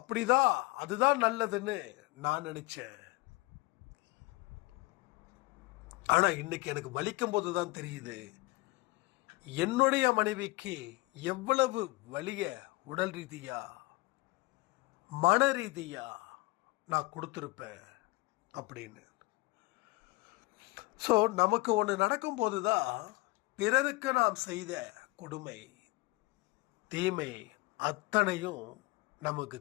அதுதான் நல்லதுன்னு நான் நினச்சேன். ஆனால் இன்னைக்கு எனக்கு வலிக்கும் போது தான் தெரியுது, என்னுடைய மனைவிக்கு எவ்வளவு வலிய உடல் ரீதியா மன ரீதியா நான் கொடுத்துருப்பேன் அப்படின்னு. ஸோ நமக்கு ஒன்று நடக்கும்போது தான் பிறருக்கு நாம் செய்த கொடுமை தீமை அத்தனையும் நமக்கு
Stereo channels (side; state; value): right; quieter; 22.2 dB